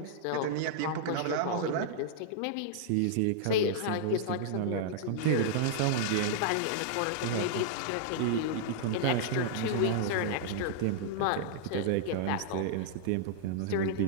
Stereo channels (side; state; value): both; different; correlation -0.01